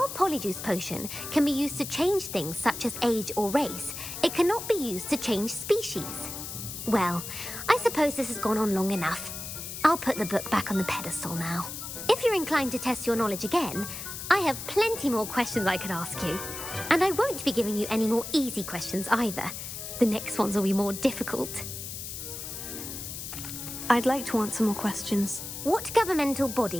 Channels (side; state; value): left; noise; hiss, 8 dB below the sound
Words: Polyjuice Potion can be used to change things such as age or race, it cannot be used to change species. Well, I suppose this has gone on long enough. I'll put the book back on the pedestal now. If you're inclined to test your knowledge again, I have plenty more questions I could ask you. And I won't be giving you any more easy questions either. The next ones will be more difficult. I'd like to answer more questions. What governmental